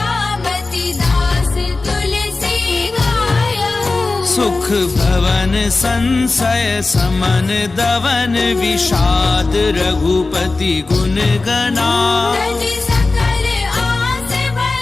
दास तुलसी गायऊ सुख भवन संशय समन दवन विषाद रघुपति गुण गणा तज सकल आस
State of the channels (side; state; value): right; quieter; 3.5 dB